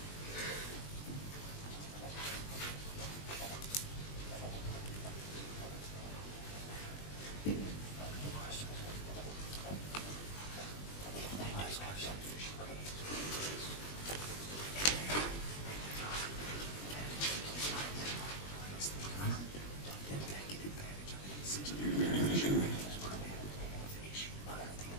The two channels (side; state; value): right; late; 20 ms